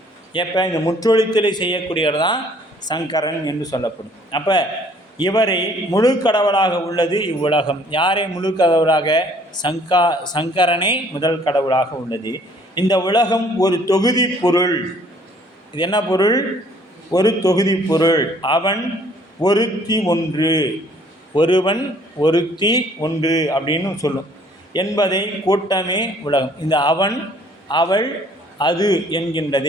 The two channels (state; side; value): normal; both; correlation 0.59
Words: எப்போ இந்த முற்றொழித்தலை செய்யக்கூடியவர் தான் சங்கரன் என்று சொல்லப்படும். அப்போ இவரை முழு கடவுளாக உள்ளது இவ்வுலகம். யாரை முழு கடவுளாக? சங்கரனே முதல் கடவுளாக உள்ளது. இந்த உலகம் ஒரு தொகுதி பொருள். இது என்ன பொருள்? ஒரு தொகுதி பொருள். அவன் ஒருத்தி ஒன்று, ஒருவன் ஒருத்தி ஒன்று அப்படின்னு சொல்லும் என்பதை கூட்டமே உலகம். இந்த அவன், அவள், அது